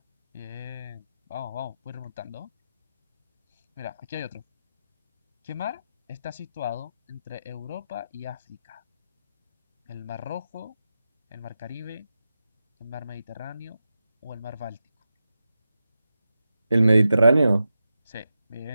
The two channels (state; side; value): inverted; both; correlation -0.90